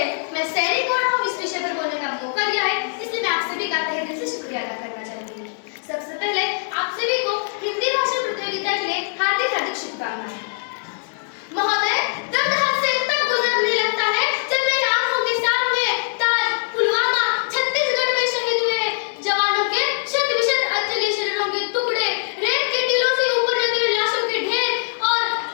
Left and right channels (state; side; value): silent; right; 64 dB below the other